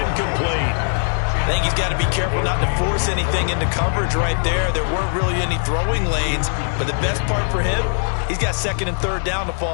I think he's got to be careful not to force anything into coverage right there. There weren't really any throwing lanes, but the best part for him, he's got 2nd and 3rd down to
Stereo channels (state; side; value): silent; right; digital silence